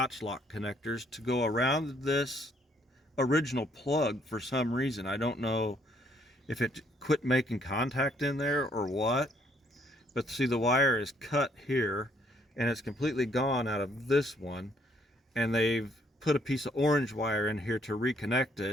lock connectors to go around this original plug for some reason. I don't know if it quit making contact in there or what, but see, the wire is cut here and it's completely gone out of this one, and they've put a piece of orange wire in here to reconnect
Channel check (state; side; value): normal; both; correlation 0.66